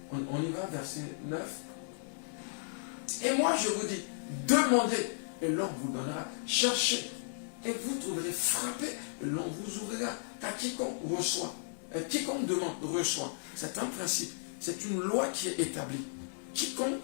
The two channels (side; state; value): right; silent; digital silence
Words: on y va, verset 9. Et moi je vous dis, demandez et l'on vous donnera, cherchez et vous trouverez, frappez et l'on vous ouvrira. Car quiconque reçoit, quiconque demande, reçoit. C'est un principe, c'est une loi qui est établie. Quiconque